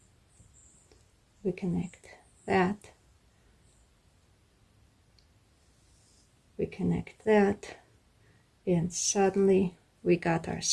We connect that. We connect that. And suddenly we got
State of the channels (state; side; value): identical; both; correlation 1.00